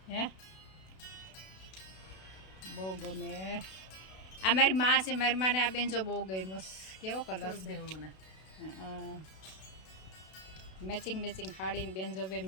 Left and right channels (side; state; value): right; late; 32 ms